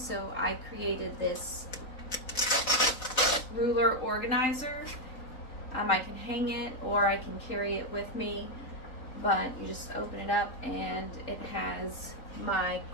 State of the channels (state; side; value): late; right; 4.0 ms